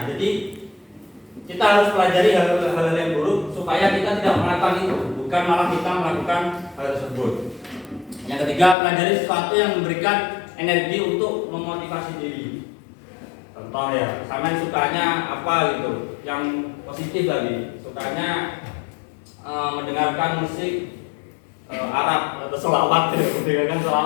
Jadi kita harus pelajari hal-hal yang buruk supaya kita tidak melakukan itu, bukan malah kita melakukan hal tersebut. Yang ketiga, pelajari sesuatu yang memberikan energi untuk memotivasi diri. Contoh ya, sama sukanya apa gitu, yang positif lagi. Sukanya mendengarkan musik Arab atau selawat mendengarkan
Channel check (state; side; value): drops out; right; at 8.8 s